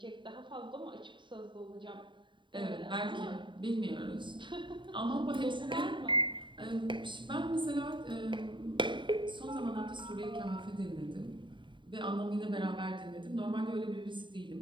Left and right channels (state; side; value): late; left; 0.23 ms